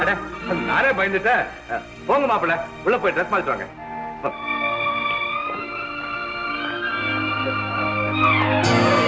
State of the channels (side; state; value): both; identical; correlation 1.00